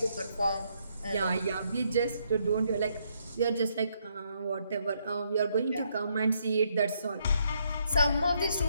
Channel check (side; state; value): both; inverted; correlation -0.74